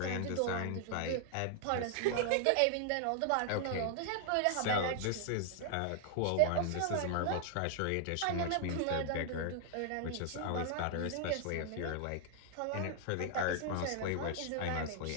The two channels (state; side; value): different; both; correlation 0.00